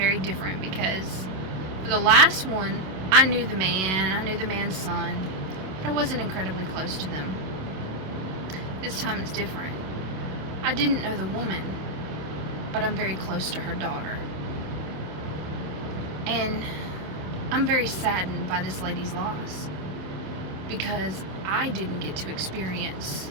different because for the last one, I knew the man's son, but I wasn't incredibly close to them. This time it's different. I didn't know the woman, but I'm very close to her daughter. And I'm very saddened by this lady's loss because I didn't get to experience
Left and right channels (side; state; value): left; late; 27 ms